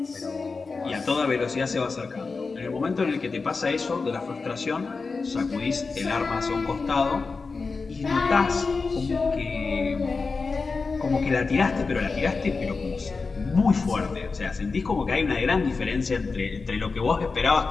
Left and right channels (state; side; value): quieter; right; 4.3 dB